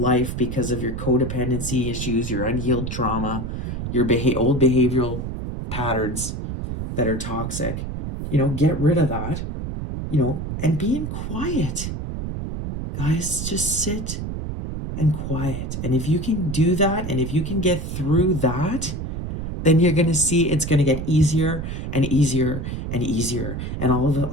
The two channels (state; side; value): noise; right; rumble, 5 dB below the sound